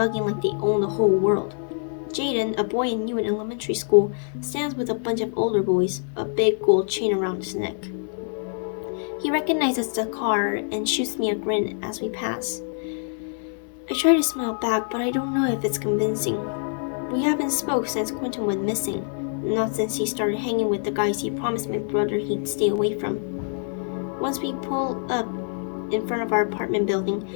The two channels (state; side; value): silent; right; 56 dB below the other